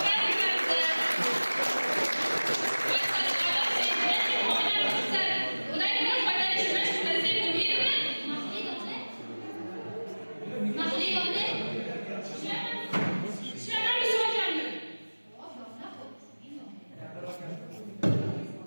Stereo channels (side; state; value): both; inverted; correlation -1.00